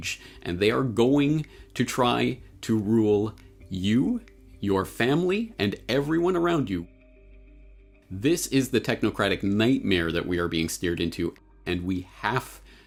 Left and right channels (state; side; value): identical; both; correlation 1.00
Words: and they are going to try to rule you, your family, and everyone around you. This is the technocratic nightmare that we are being steered into, and we have